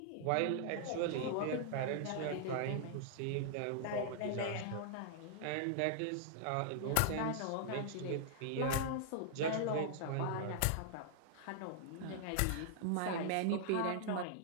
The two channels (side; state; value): both; different; correlation -0.01